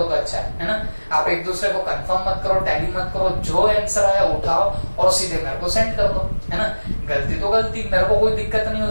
तो अच्छा है ना। आप एक दूसरे को कंफर्म मत करो, टैली मत करो, जो आंसर आया उठाओ और सीधे मेरे को सेंड कर दो, है ना। गलती तो गलती, मेरे को कोई दिक्कत नहीं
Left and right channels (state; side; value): inverted; both; correlation -1.00